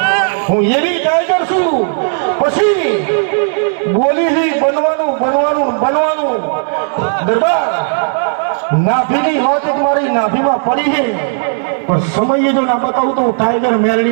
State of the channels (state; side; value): silent; left; digital silence